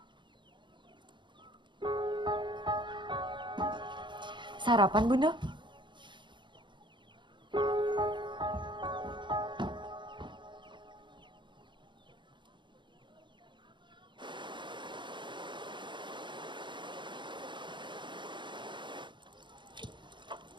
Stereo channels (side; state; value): left; late; 0.23 ms